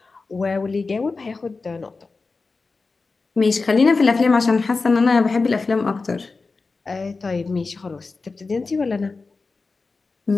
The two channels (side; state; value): right; quieter; 4.0 dB